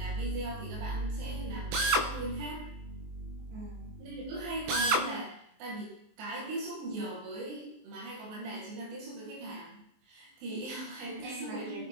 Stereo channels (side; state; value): left; late; 23 ms